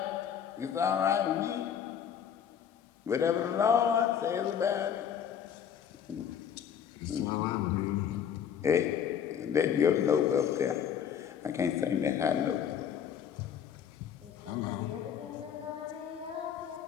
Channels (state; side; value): quieter; right; 8.4 dB